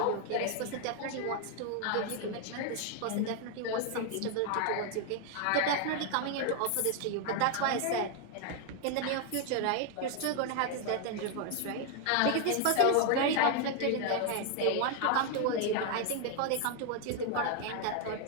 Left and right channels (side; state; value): both; different; correlation 0.00